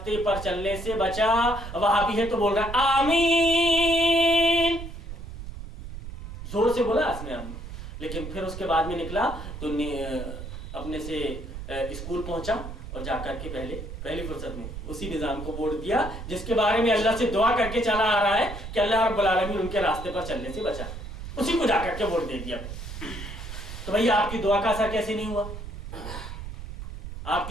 پر چلنے سے بچا. وہابی ہے تو بول رہا ہے آمین, زور سے بولا اس نے آمین. لیکن پھر اس کے بعد میں نکلا تو اپنے سے اسکول پہنچا اور جا کر کے پہلی فرصت میں اسی نظام کو ووٹ دیا جس کے بارے میں اللہ سے دعا کر کے چلا آ رہا ہے کہ اللہ رب العالمین ان کے راستے پر چلنے سے بچا, اسی کو جا کر کے ووٹ دے دیا. تو بھئی آپ کی دعا کا اثر کیسے نہیں ہوا؟ آپ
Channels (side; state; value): right; noise; rumble, 9 dB below the sound